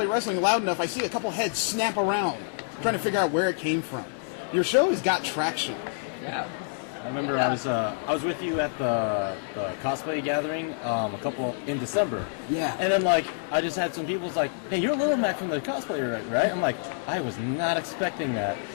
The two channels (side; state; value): right; silent; digital silence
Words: wrestling loud enough, I see a couple heads snap around, trying to figure out where it came from. Your show has got traction. Yeah. I remember I was with you at the cosplay gathering a couple in December. Yeah. And then I just had some people's like, "Hey, you're Little Mac from the cosplay, right?" I'm like, I was not expecting that.